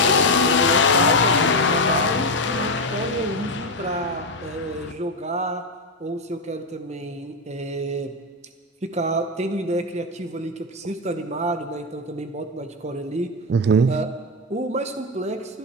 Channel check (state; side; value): normal; both; correlation 0.07